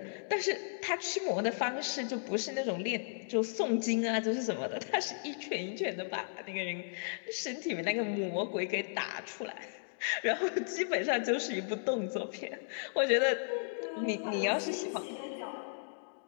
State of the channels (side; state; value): right; silent; digital silence